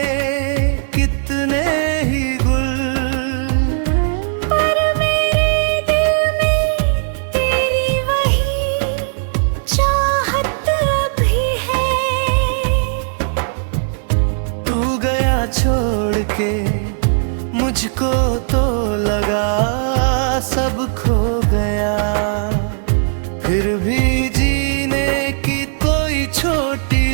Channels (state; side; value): silent; left; digital silence